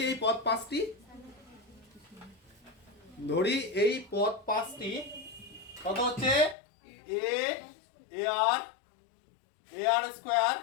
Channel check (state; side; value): drops out; right; at 6.6 s